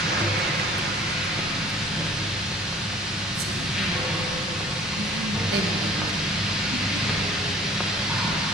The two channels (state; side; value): normal; both; correlation 0.50